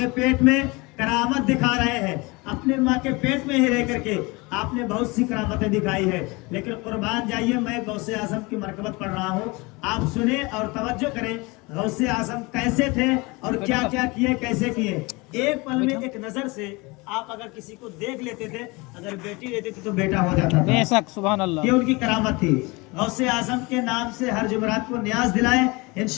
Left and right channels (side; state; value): right; quieter; 25.4 dB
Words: पेट में करामत दिखा रहे हैं। अपने माँ के पेट में ही रह करके आपने बहुत सी करामतें दिखाई है। लेकिन कुर्बान जाइए, मैं गौसे आज़म की मरकबत पढ़ रहा हूँ, आप सुने और तवज्जो करें। गौसे आज़म कैसे थे और क्या क्या किए, कैसे किए। एक पल में एक नजर से आप अगर किसी को देख लेते थे, अगर बेटी रहती थी तो बेटा हो जाता था। बेशक, सुभान अल्लाह। ये उनकी करामत थी। गौसे आज़म के नाम से हर जुमरात को न्याज दिलाएं,